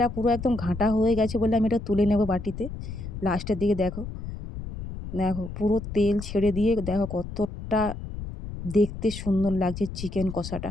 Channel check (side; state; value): left; noise; rumble, 9 dB below the sound